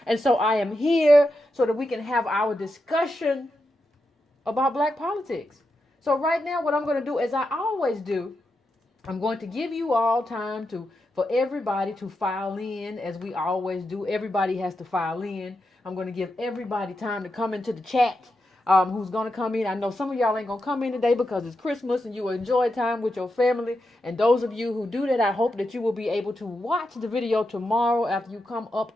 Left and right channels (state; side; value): normal; both; correlation 0.87